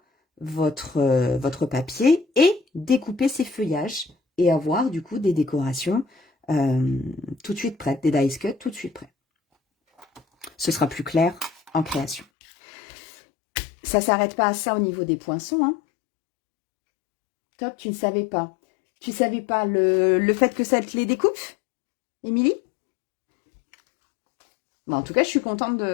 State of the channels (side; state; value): right; drops out; at 12.2 s